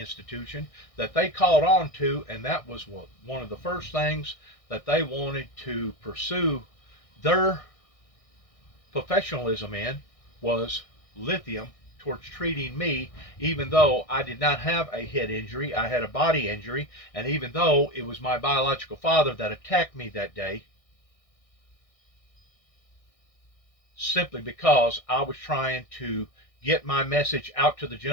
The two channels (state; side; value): late; right; 1.6 ms